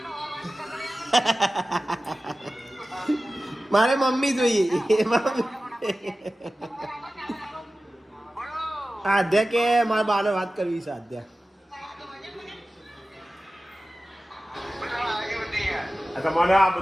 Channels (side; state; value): both; normal; correlation 0.95